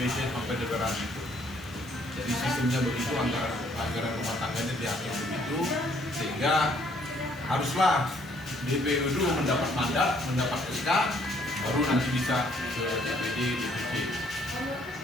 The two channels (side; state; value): left; noise; hiss, 25 dB below the sound